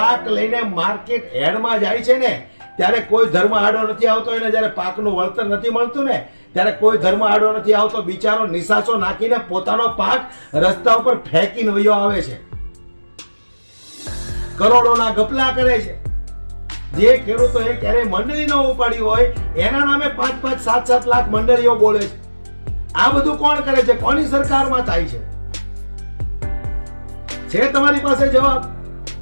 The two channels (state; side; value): inverted; both; correlation -1.00